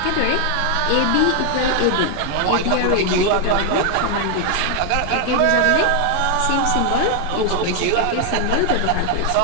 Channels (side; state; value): both; different; correlation 0.00